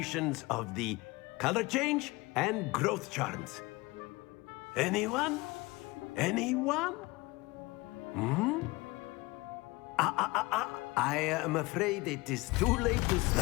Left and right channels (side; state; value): right; quieter; 22.6 dB